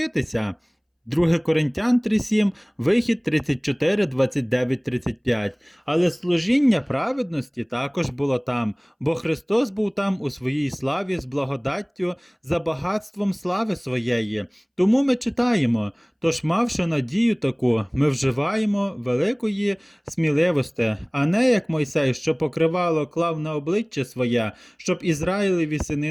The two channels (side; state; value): both; identical; correlation 1.00